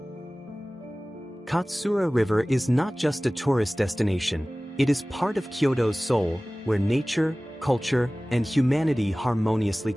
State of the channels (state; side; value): normal; both; correlation 0.98